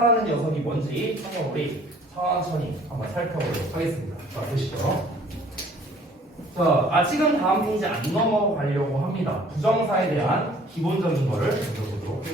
녀석이 뭔지 한번 우리 천천히 한번 살펴보도록 하겠습니다. 자, 보시죠. 자, 아직은 다음 페이지 안 넘어가려고 합니다. 부정사에 대한 기본적인 거를 배워보도록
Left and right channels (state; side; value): normal; both; correlation 0.55